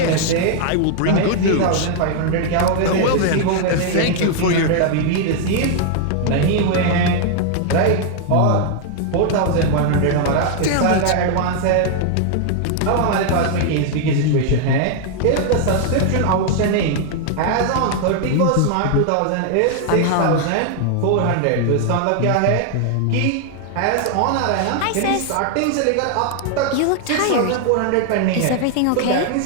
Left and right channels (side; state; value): both; different; correlation 0.00